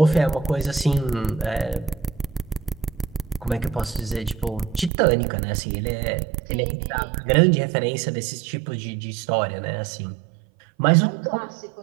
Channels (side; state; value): left; drops out; at 4.9 s